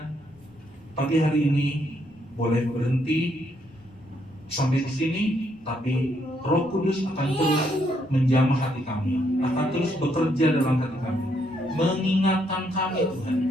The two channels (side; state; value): left; noise; rumble, 28 dB below the sound